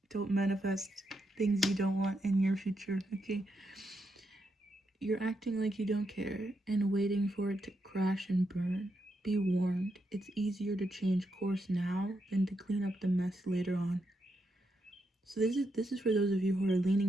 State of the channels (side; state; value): both; normal; correlation 0.82